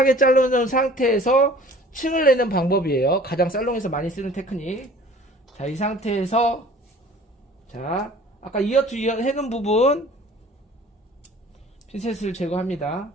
자르는 상태에서 층을 내는 방법이에요. 가장 살롱에서 많이 쓰는 테크닉. 자, 이 상태에서 자, 아까 이어 투 이어 해놓은 부분 핀셋을 제거합니다.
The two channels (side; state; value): both; normal; correlation 0.48